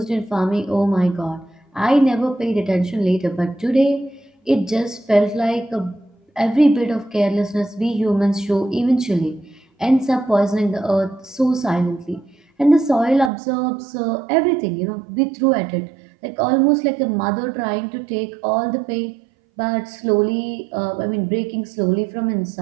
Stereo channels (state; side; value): drops out; left; at 13.3 s